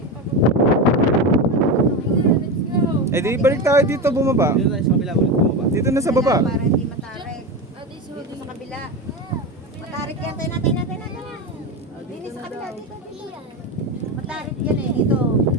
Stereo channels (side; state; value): both; normal; correlation 0.19